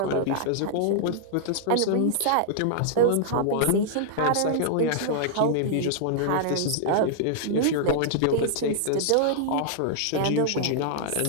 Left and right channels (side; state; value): both; different; correlation -0.01